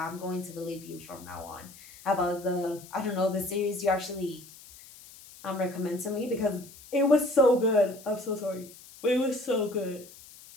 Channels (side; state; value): left; noise; hiss, 20 dB below the sound